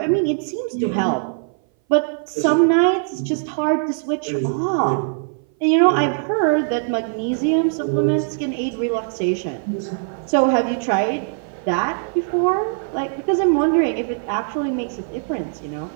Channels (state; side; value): silent; left; 59 dB below the other